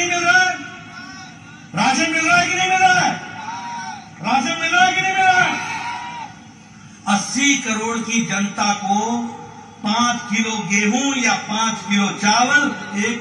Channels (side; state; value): both; identical; correlation 1.00